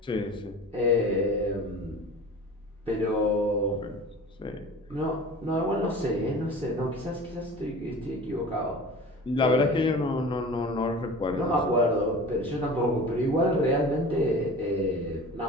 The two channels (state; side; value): normal; both; correlation 0.39